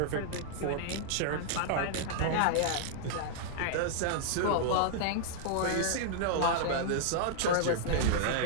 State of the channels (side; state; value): both; different; correlation -0.01